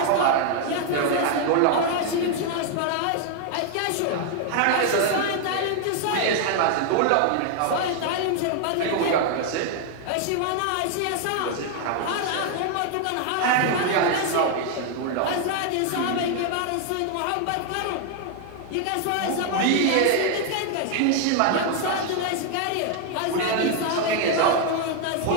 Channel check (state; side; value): different; both; correlation 0.00